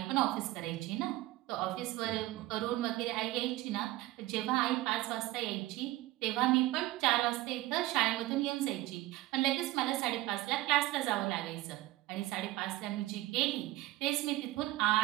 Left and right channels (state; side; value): quieter; left; 17.5 dB